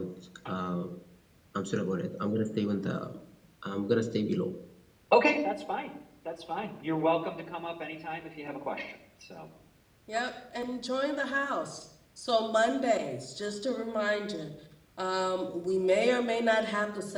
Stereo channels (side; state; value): both; identical; correlation 1.00